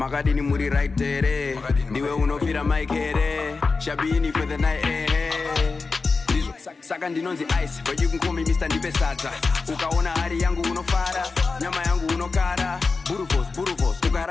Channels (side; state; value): right; quieter; 4.2 dB